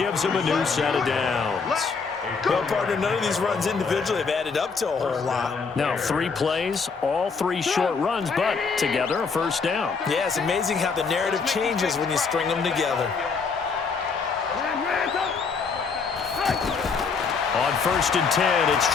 him a new set of downs. Well, partner, none of these runs individually have added up to a whole lot. Now, 3 plays, all 3 short runs, but together a first down. Yeah, it's amazing how the narrative changes when you string them together. On 1st and 10, it's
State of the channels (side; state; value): right; quieter; 5.1 dB